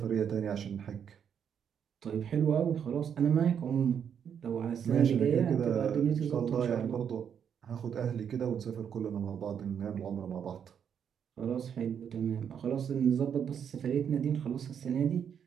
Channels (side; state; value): left; quieter; 8.0 dB